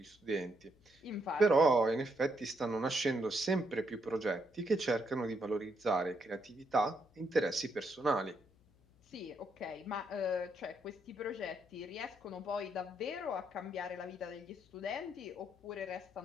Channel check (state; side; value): noise; left; hum, 30 dB below the sound